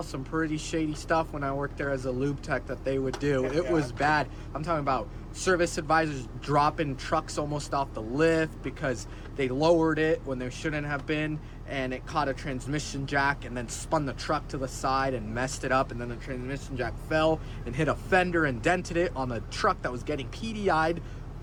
some pretty shady stuff when I worked there as a lube tech that they would do. It was bad. I'm talking about service advisors dropping trucks almost off the lift because they lowered it when they shouldn't have been, and it caught a transmission jack and then spun the truck to the side and messed it up, and then the transmission jack fell and hit a fender and dented it on the truck that was getting PDI'd,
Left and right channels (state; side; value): identical; both; correlation 1.00